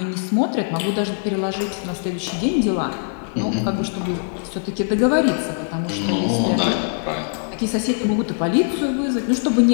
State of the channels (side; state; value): right; silent; digital silence